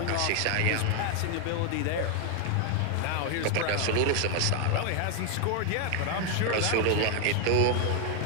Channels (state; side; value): different; both; correlation 0.00